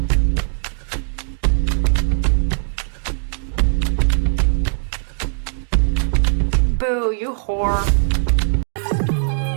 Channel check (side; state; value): left; silent; digital silence